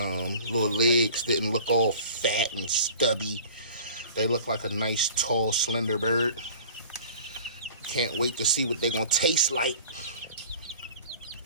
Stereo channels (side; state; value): both; inverted; correlation -0.44